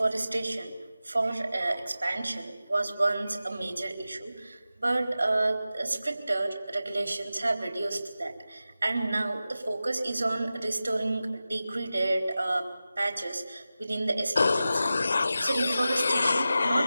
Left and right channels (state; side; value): inverted; both; correlation -0.94